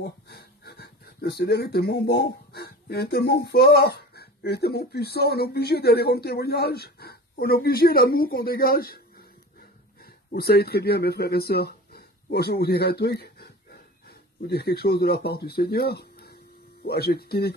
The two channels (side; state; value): both; normal; correlation 0.36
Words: Le Seigneur est tellement bon, il est tellement fort, il est tellement puissant, on est obligé d'aller rendre témoignage. On est obligé l'amour qu'on dégage. Vous savez très bien, mes frères et sœurs, moi je vais vous dire un truc, vous dire quelque chose de la part du Seigneur. Moi,